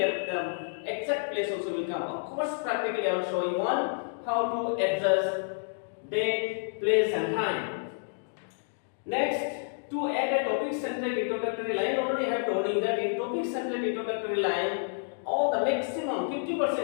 exact place also will come. Of course, practically I will show you how to adjust date, place and time. Next, to add a topic centered introductory line, already I have told you that in topic centered introductory line, all the maximum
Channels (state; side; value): silent; right; digital silence